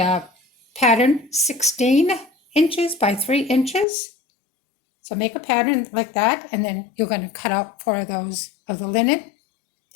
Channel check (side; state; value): right; drops out; at 3.9 s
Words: pattern 16 inches by 3 inches. So make a pattern like that, and then you're going to cut out 4 of those of the linen.